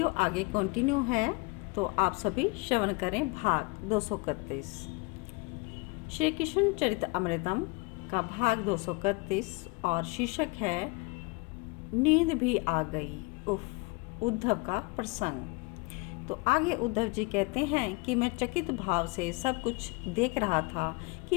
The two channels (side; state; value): right; quieter; 28.2 dB